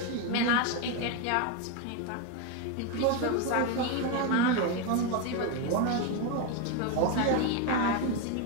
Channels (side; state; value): both; different; correlation 0.02